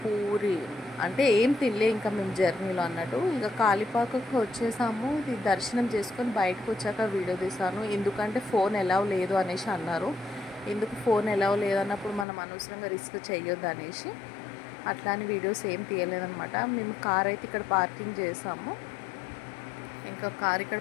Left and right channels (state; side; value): drops out; right; at 12.2 s